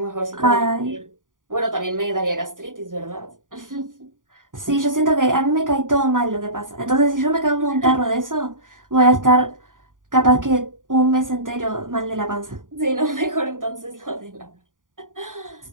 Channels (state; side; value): late; left; 0.89 ms